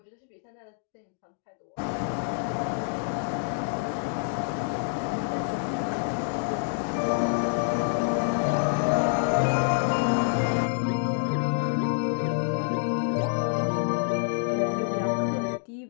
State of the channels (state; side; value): silent; right; digital silence